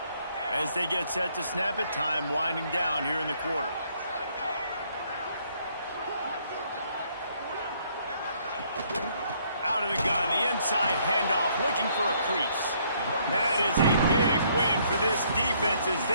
As they get set to snap it, time winding down here in the quarter. Out of the gun, the inside handoff, looking for a crease. That is a big win for this defense as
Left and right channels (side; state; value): both; inverted; correlation -0.67